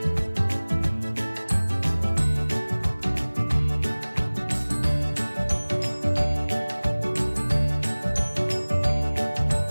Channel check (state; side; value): inverted; both; correlation -1.00